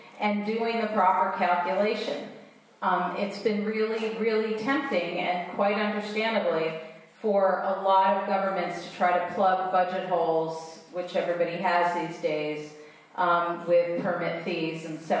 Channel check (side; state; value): both; identical; correlation 1.00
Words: and doing the proper calculation. It's been really, really tempting, and quite understandably, for a lot of governments to try to plug budget holes, which everybody has these days, with permit fees and